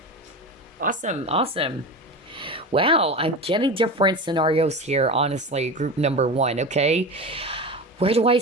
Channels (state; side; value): normal; both; correlation 0.26